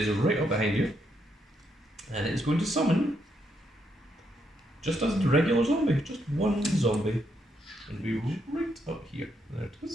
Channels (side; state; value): both; normal; correlation 0.78